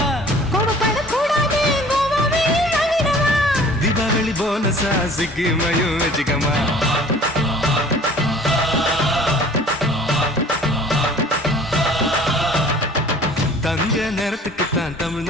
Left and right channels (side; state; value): both; normal; correlation 0.49